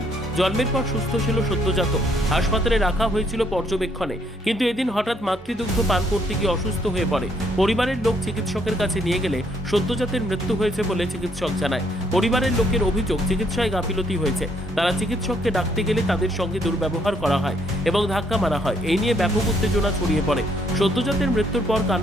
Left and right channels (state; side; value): normal; both; correlation 0.69